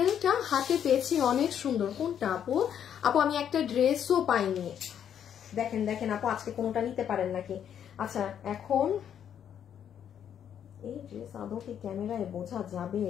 হাতে পেয়েছি, অনেক সুন্দর। কোনটা আপু? আপু আমি একটা ড্রেসও পাইনি, দেখেন দেখেন আপু আজকে কোনোটা নিতে পারেন নাকি। আচ্ছা এখন এই ড্রেস আদৌ কি ক্যামেরায় বোঝা যাবে?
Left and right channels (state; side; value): quieter; right; 9.1 dB